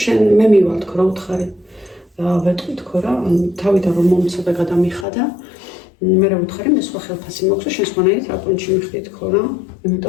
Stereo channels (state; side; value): drops out; right; at 5.1 s